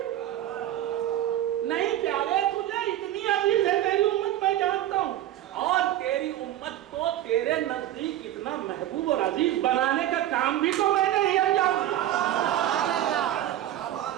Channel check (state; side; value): quieter; left; 12.9 dB